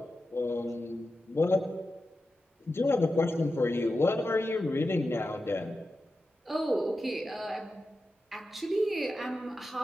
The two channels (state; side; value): normal; both; correlation 0.91